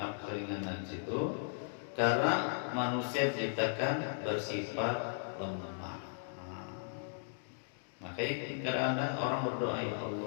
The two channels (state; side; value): silent; right; digital silence